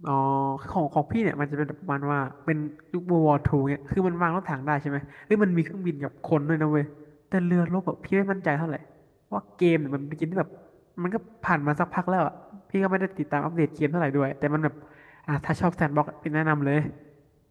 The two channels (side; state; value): both; identical; correlation 1.00